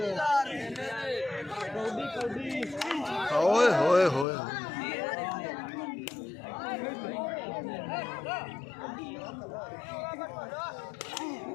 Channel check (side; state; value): right; drops out; at 4.2 s